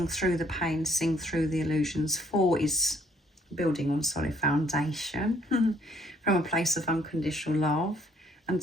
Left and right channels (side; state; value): both; normal; correlation 0.65